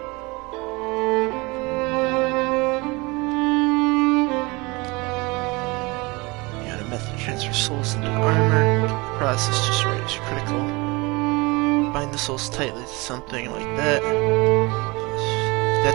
You got a method to transfer souls into armor. The process just right is critical. Bind the souls tightly to something like that.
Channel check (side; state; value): left; quieter; 25.0 dB